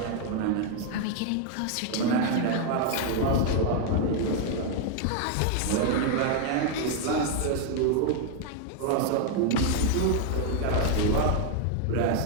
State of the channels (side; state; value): both; different; correlation 0.00